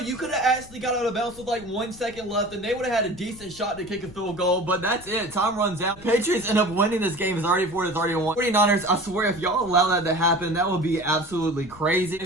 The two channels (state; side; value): noise; left; rumble, 19 dB below the sound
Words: could have actually got out of bounds with like 1 second left, and they would have had a decent shot to kick a field goal, but that's it. Time runs out. Patriots end up winning this game 34-31. 49ers, I swear, if y'all allow that to happen, that would be absolutely crazy.